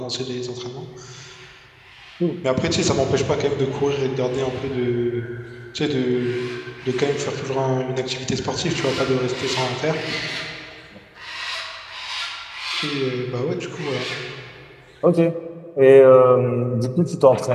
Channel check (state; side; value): identical; both; correlation 1.00